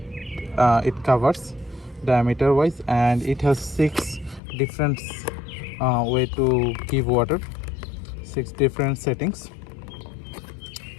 it covers diameter wise, and it has six different way to give water, six different settings,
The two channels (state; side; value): drops out; right; at 4.4 s